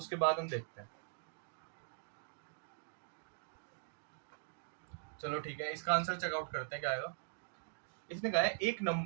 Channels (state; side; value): silent; left; digital silence